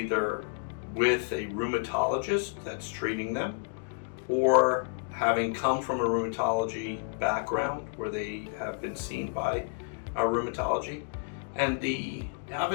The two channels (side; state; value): right; silent; digital silence